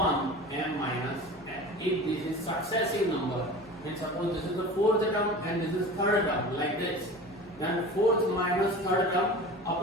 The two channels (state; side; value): normal; both; correlation 0.36